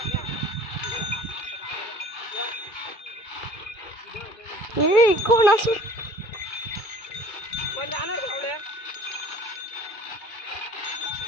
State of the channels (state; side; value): late; right; 2.3 ms